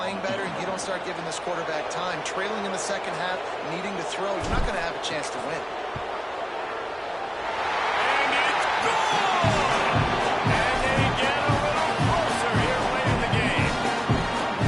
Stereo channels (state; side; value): identical; both; correlation 1.00